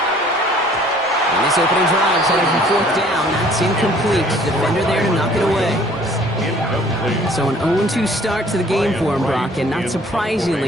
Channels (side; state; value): both; normal; correlation 0.55